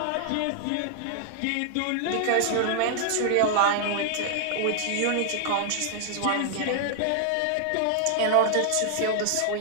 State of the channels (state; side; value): different; both; correlation 0.00